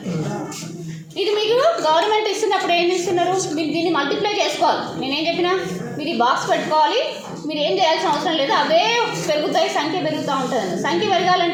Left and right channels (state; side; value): identical; both; correlation 1.00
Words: ఇది మీకు గవర్నమెంట్ ఇస్తున్నప్పుడు ఏం ఇస్తున్నారు, మీరు దీన్ని మల్టిప్లై చేసుకోవాలి. నేనేం చెప్పినా మీరు ఈ బాక్స్ పెట్టుకోవాలి, మీరు ఏం చేయాల్సిన అవసరం లేదు, అవే పెరుగుతాయి, సంఖ్య పెరుగుతూ ఉంటుంది. సంఖ్య